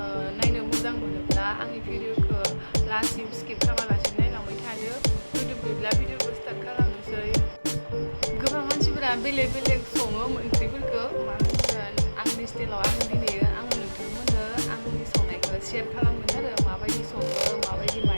नायनो मोजां मोनोब्ला आंनि भिडिअखौ लास्टसिम स्किप खालामालासिनो नायलांबाय थादो. भिडिअखौ स्टार्ट खालामनोसै. गोबां मानसिफोरा बेलेग बेलेग सङो ओंख्रिफोरखौ मा होनगोन आंनि स्टाइलाव आं दिनैयो आङो नोंथांमोननो आंनि संनायखौ शेयार खालामगोन आरो माबायदि सङो माबायदि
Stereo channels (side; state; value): both; inverted; correlation -1.00